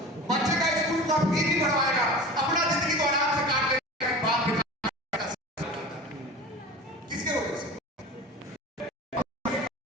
बच्चे का स्कूल का फी भी भरवाएगा, अपना जिंदगी को आराम से काट लेगा, बाप बेटा किसके वजह से?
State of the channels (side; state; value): both; normal; correlation 0.35